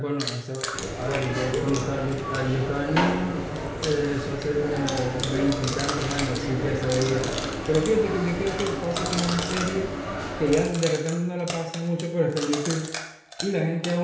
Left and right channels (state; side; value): identical; both; correlation 1.00